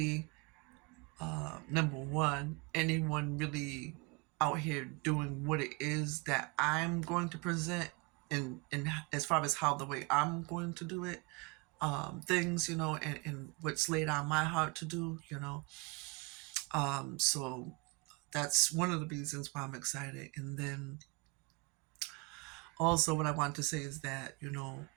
number one, anyone really out here doing what it is that I'm going to present in as far as how the way I'm going to do it. Things, and what's laid on my heart to do, So that's one of the reasons why I'm excited. And then also what I want to say is that,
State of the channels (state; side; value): quieter; left; 27.7 dB